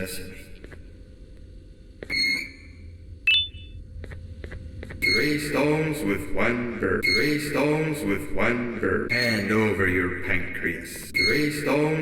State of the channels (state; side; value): identical; both; correlation 1.00